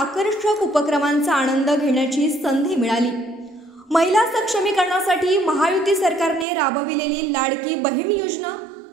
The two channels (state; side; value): drops out; left; at 6.5 s